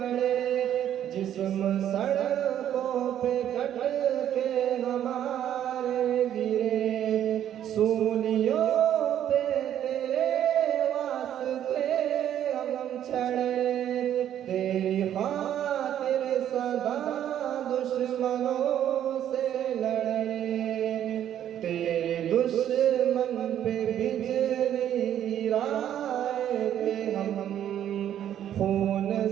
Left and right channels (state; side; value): quieter; left; 10.7 dB